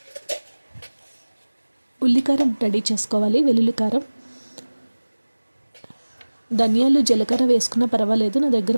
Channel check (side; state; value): both; inverted; correlation -1.00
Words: ఉల్లికారం రెడీ చేసుకోవాలి. వెల్లుల్లి కారం, ధనియాలు జీలకర్ర వేసుకున్నా పర్వాలేదు. నా